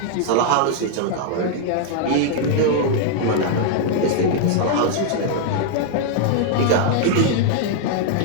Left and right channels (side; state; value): both; different; correlation 0.00